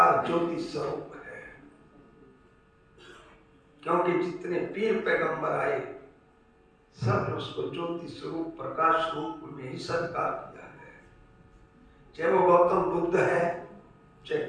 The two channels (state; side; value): identical; both; correlation 1.00